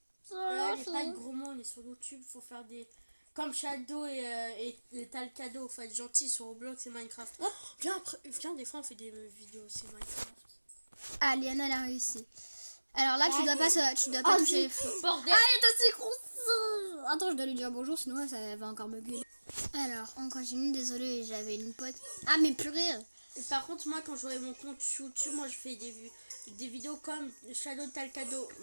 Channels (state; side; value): inverted; both; correlation -1.00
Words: Là, il n'y a pas de gros mots, on est sur YouTube. Faut faire des. Comme Shadow et t'as le cadeau. Faut être gentil sur Roblox et Minecraft. Oh, viens, des fois, on fait des vidéos aussi Minecraft. Ah, Liana, elle a réussi. Alors là, tu dois pas toucher les feux. Bordel! Ah, il est aussi gros. Attends, je dois lui dire bonjour, sinon ça va encore me gueuler. Alors, on continue. Désolée, j'avais une pote. Ah, mais purée. Et par contre, moi, quand j'aurai mon compte YouTube, moi, je fais des vidéos comme Shadow, t'as le cadeau,